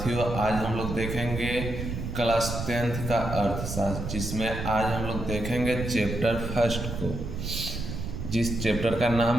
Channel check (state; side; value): noise; right; rumble, 5 dB below the sound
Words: आज हम लोग देखेंगे क्लास 10th का अर्थशास्त्र, जिसमें आज हम लोग देखेंगे चैप्टर फर्स्ट को, जिस चैप्टर का